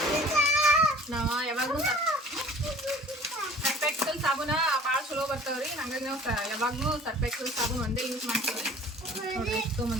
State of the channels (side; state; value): both; normal; correlation 0.48